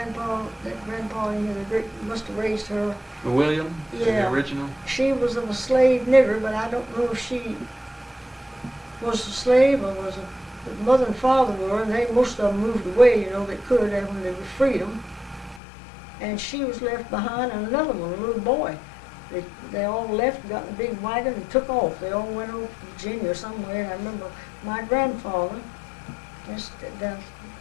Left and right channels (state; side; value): drops out; right; at 15.6 s